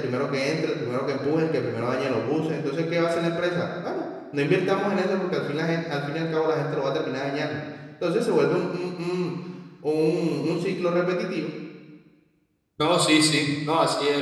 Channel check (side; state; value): both; identical; correlation 1.00